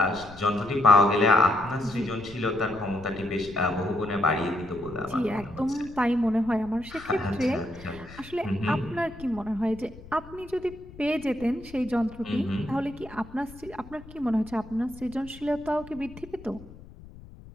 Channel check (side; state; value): left; noise; rumble, 18 dB below the sound